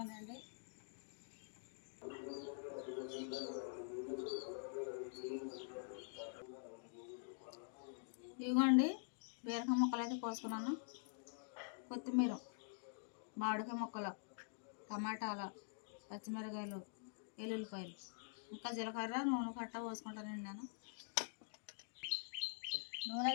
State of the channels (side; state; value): right; silent; digital silence